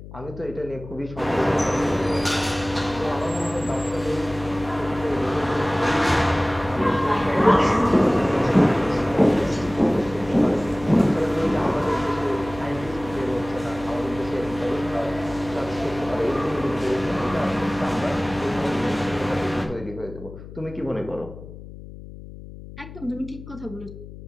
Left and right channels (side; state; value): left; noise; hum, 15 dB below the sound